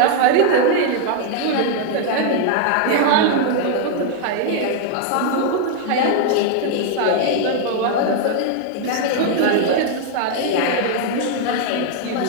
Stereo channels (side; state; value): both; different; correlation 0.00